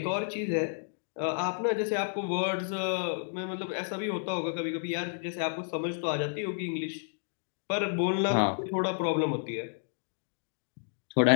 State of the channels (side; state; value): right; silent; digital silence